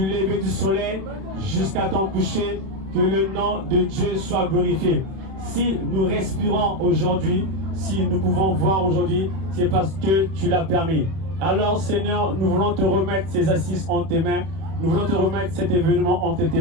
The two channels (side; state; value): left; late; 31 ms